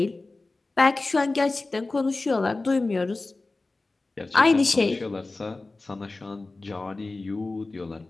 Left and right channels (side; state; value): right; quieter; 3.3 dB